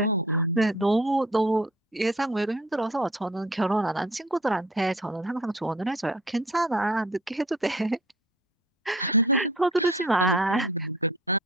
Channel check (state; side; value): normal; both; correlation 0.49